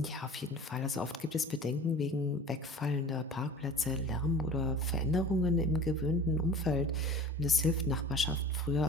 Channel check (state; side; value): normal; both; correlation 0.41